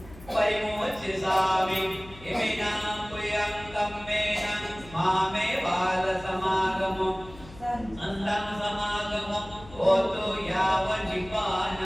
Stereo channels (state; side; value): noise; left; hum, 19 dB below the sound